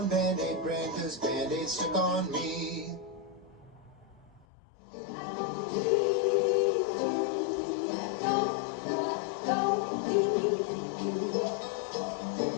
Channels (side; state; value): right; drops out; at 4.5 s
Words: Band-Aid brand 'cause Band-Aid stuck on me.